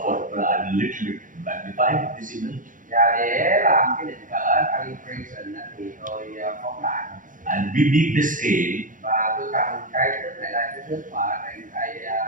a little bit magnify this image. Và để làm cái định cỡ calibration thì tôi phóng đại And we need the scale. Và tôi cần cái thước này là cái thước mà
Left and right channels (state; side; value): late; left; 0.38 ms